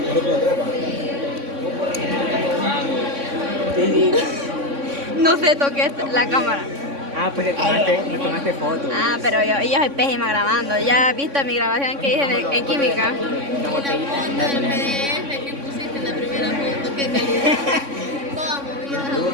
¿No puedo trepa? No sé, toqué la cámara. Ah, pues le tomaste foto. Ah, pero yo soy pésima grabando. ¿Ya has visto mi grabación que hice en química? Una botellita. Foto del PDF que pusiste en la primera foto, qué calidad. Toda movida.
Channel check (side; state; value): left; late; 3.6 ms